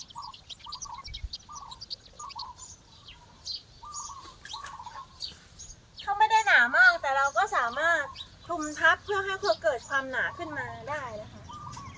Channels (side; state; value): both; identical; correlation 1.00